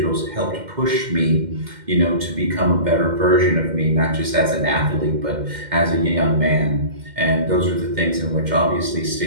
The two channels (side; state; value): left; late; 2.1 ms